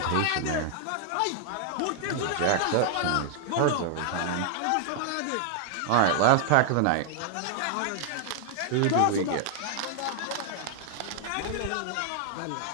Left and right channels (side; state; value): both; different; correlation -0.01